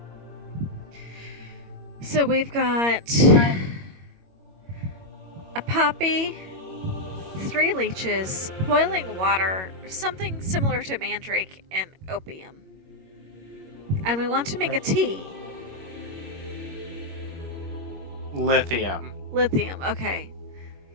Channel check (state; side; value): late; left; 21 ms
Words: So we've got a poppy, 3 leeches, boiling water, something similar to mandrake, and opium. And we want to make a tea. Lithium Lithium, okay.